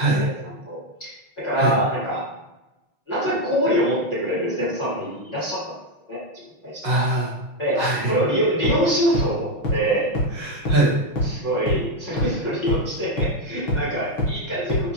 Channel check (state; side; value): late; right; 6.1 ms